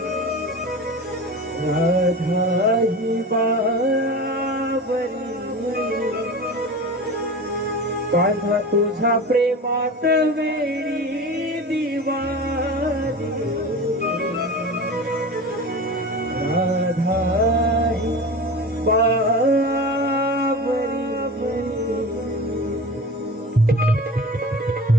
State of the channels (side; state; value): both; normal; correlation 0.32